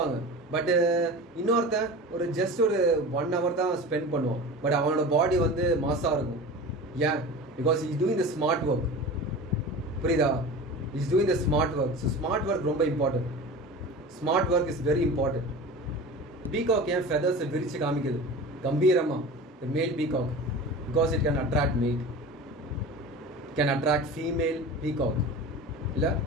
பட் இன்னொருத்தன் ஒரு 1 hour தான் ஸ்பெண்ட் பண்ணுவான். பட் அவனோட பாடி வந்து மாஸாக இருக்கும். ஏன்? Because is doing the smart work. புரியுதா? Is doing the smart work. So smart work ரொம்ப important. Smart work is very important. Peacock ஏன் ஃபெதர்ஸை விரிச்சு காமிக்குது கம்பீரமாக? The male peacock, because it can attract mate, it can attract female peacock. இல்லை,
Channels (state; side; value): normal; both; correlation 0.34